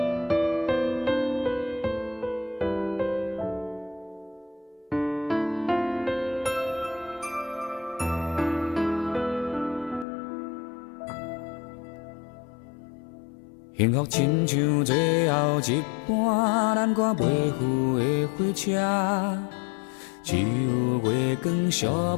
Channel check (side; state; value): right; drops out; at 10.1 s